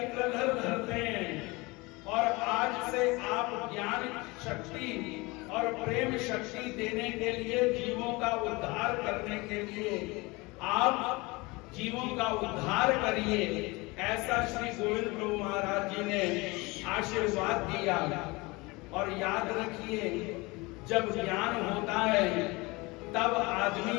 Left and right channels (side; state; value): right; quieter; 24.3 dB